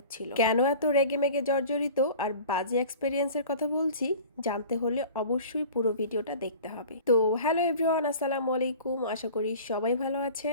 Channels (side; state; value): both; inverted; correlation -0.42